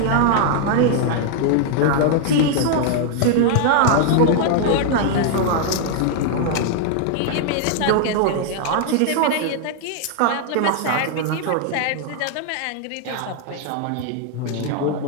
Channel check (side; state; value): both; different; correlation 0.00